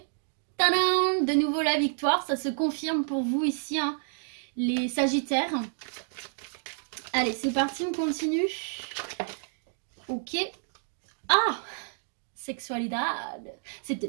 Tadam! De nouveau la victoire, ça se confirme pour vous ici, hein, les Sagittaires. Allez, c'est parti, on continue. Ok. Ah! Sexualité, c'est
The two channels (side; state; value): left; silent; digital silence